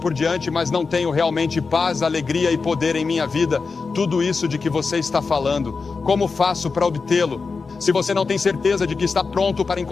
diante, mas não tenho realmente paz, alegria e poder em minha vida. Tudo isso de que você está falando, como faço para obtê-lo? Se você não tem certeza de que está pronto para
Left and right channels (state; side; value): quieter; right; 4.6 dB